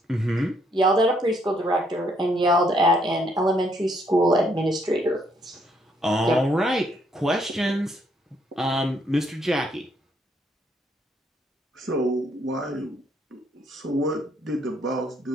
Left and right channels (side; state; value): both; normal; correlation 0.70